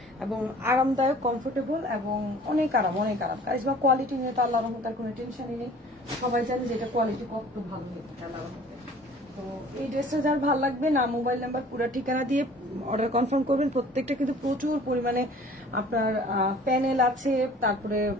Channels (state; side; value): normal; both; correlation 0.49